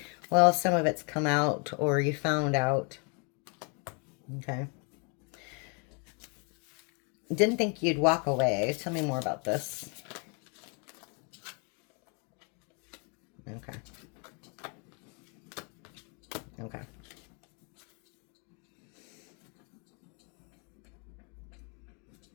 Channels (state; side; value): quieter; right; 36.0 dB